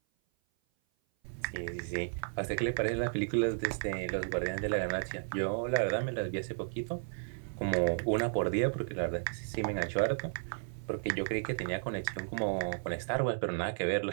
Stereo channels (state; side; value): silent; left; 55 dB below the other